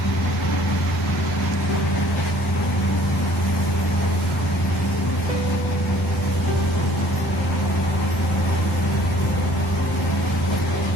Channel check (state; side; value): normal; both; correlation 0.55